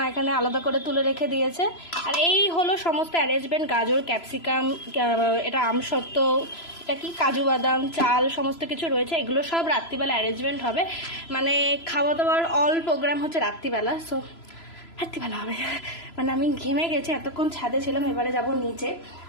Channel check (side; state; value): right; late; 3.0 ms